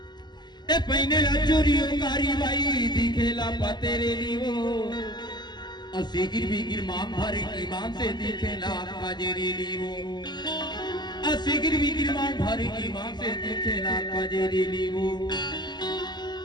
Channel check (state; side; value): late; right; 0.21 ms